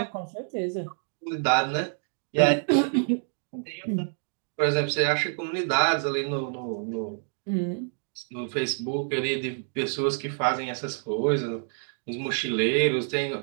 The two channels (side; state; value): left; silent; 56 dB below the other